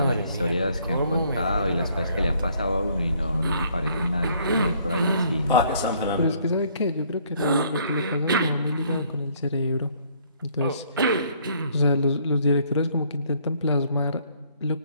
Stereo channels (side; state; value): both; inverted; correlation -0.63